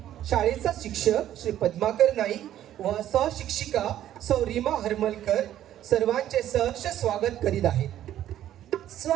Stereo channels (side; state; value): left; quieter; 12.0 dB